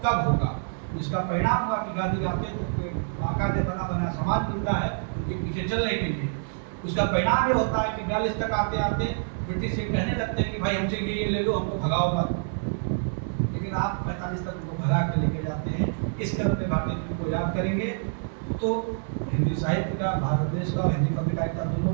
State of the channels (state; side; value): silent; left; 60 dB below the other